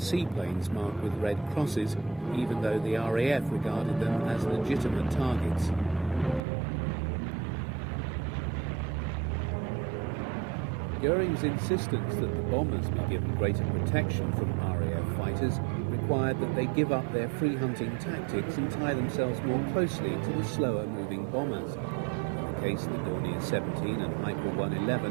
marked with red crosses, even though the RAF regarded them as legitimate targets. Goering's insistence that the bombers be given greater protection from RAF fighters required that they give up their free hunting tactics and tie themselves more closely to the slower moving bombers. In the case of the Dornier 17 and Heinkel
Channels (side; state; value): left; drops out; at 6.4 s